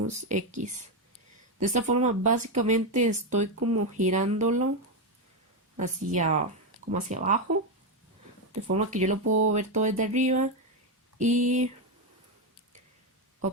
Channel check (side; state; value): both; normal; correlation 0.08